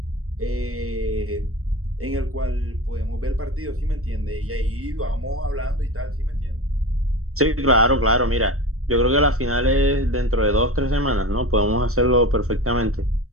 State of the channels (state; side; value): late; left; 0.64 ms